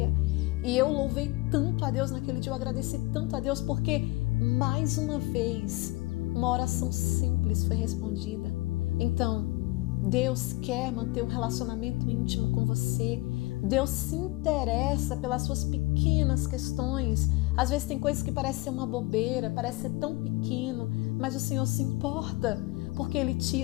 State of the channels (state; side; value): quieter; right; 21.7 dB